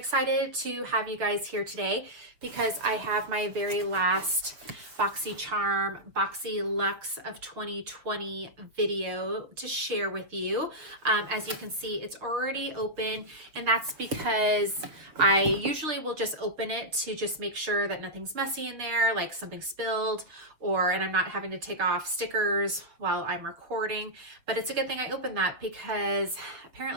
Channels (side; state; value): left; late; 6.6 ms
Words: to have you guys here today because I have my very last BoxyCharm BoxyLuxe of 2020 video to share with you. As you can see, it's already open, and that's because I usually will just open it to just make sure that nothing's messy in there, like something spilled, and I'm not having to take off stickers while I'm recording. But it's a good thing I opened that because